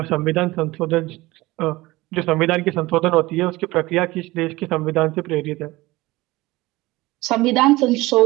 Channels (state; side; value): quieter; left; 19.9 dB